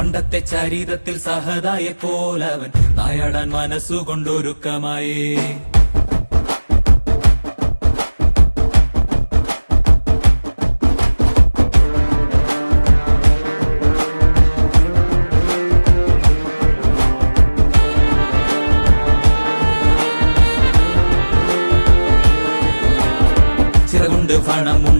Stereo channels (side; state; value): both; inverted; correlation -1.00